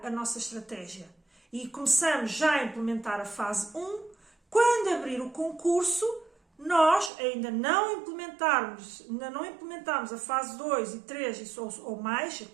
a nossa estratégia e começamos já a implementar a fase 1. Quando abrir o concurso, nós ainda não implementarmos a fase 2 e 3 ou mais,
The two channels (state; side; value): drops out; left; at 7.1 s